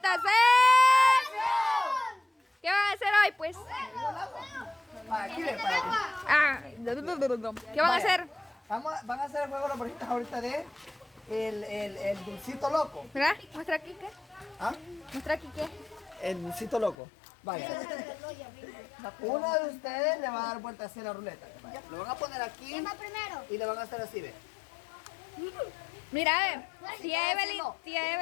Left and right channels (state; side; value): drops out; right; at 16.9 s